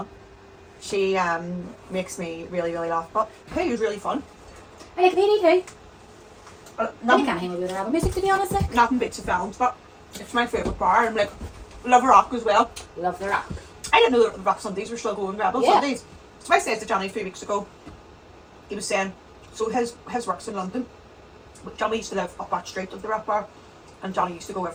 She makes me really, really laugh. But hey, it was really fun. I like Penny too. I Nothing, can't hang with her album music, to be honest. Like. nothing beats the films, but it's my favourite bar. And like, love rock as well. Love the rock. I didn't know that the rock Sundays were still going, Rebel Sundays. So I said to Johnny 3 weeks ago, he was saying, so his work's in London. But Johnny used to live up that street of the rock bar, and Johnny used to go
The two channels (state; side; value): identical; both; correlation 1.00